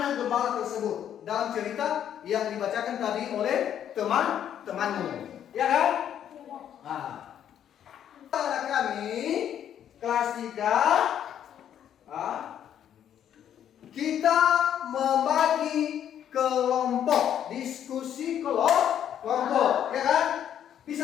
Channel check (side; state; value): right; quieter; 9.8 dB